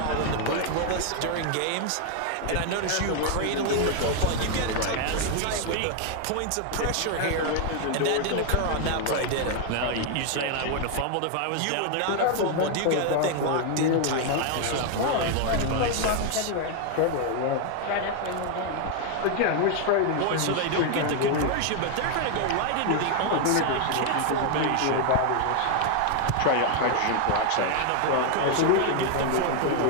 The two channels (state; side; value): different; both; correlation 0.01